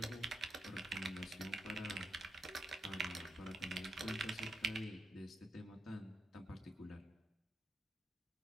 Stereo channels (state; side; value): normal; both; correlation 0.83